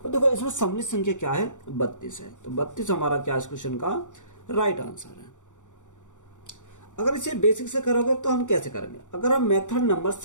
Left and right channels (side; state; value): right; late; 0.86 ms